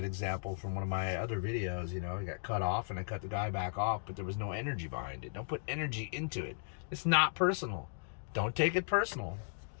example from one of my other videos, I got cut off and I cut the guy back off, but there was no energy behind it. Don't put energy into it. It's not personal. Don't take it personal.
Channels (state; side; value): silent; right; digital silence